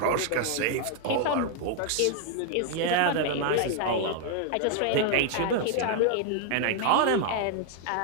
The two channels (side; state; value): both; different; correlation 0.00